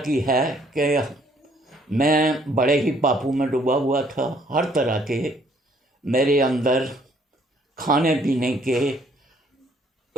है कि मैं बड़े ही पापों में डूबा हुआ था। हर तरह के मेरे अंदर खाने पीने के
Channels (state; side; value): normal; both; correlation 0.64